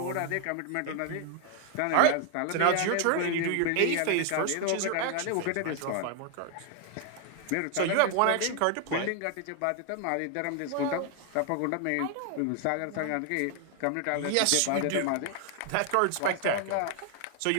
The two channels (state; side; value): different; both; correlation 0.00